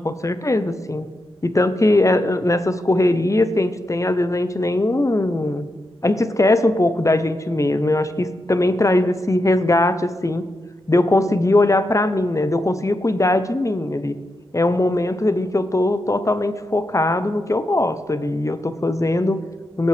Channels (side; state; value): both; normal; correlation 0.85